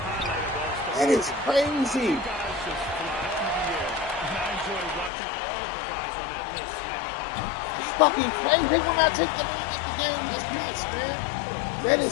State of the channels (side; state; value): right; drops out; at 5.1 s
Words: That is crazy. It's fucking crazy. They will not take the man out the game. That's nuts, man. That